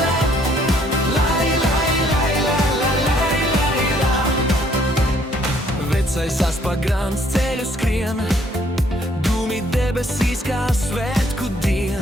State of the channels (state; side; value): normal; both; correlation 0.64